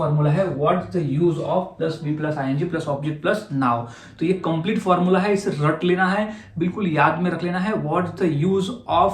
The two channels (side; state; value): both; identical; correlation 1.00